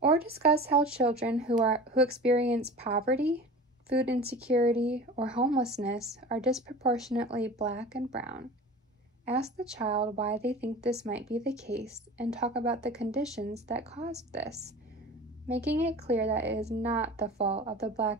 Or discuss how children who experience poverty, food insecurity, or homelessness are disproportionately Black and brown. Ask the child why they think this might be the case and talk about the conditions that caused this, making it clear that it is not the fault of the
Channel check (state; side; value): normal; both; correlation 0.37